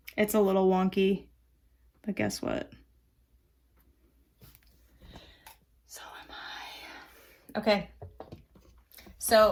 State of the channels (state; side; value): identical; both; correlation 1.00